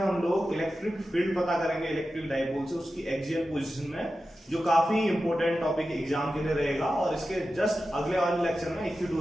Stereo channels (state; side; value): normal; both; correlation 0.92